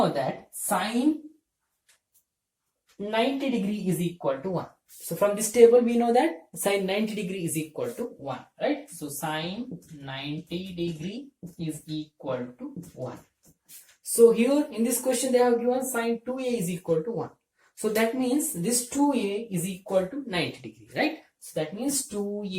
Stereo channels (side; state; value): both; identical; correlation 1.00